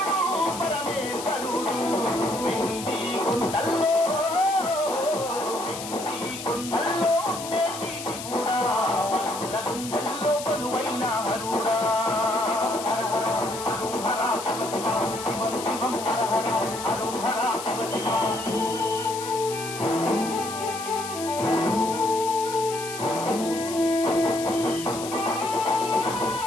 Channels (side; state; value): left; noise; hiss, 10 dB below the sound